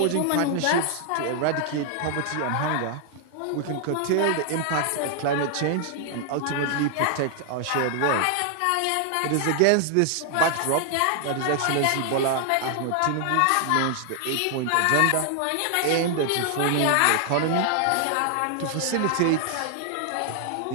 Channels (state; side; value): different; both; correlation 0.00